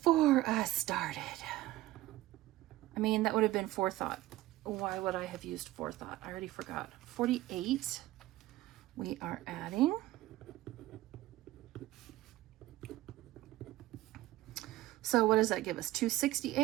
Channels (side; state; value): left; quieter; 16.5 dB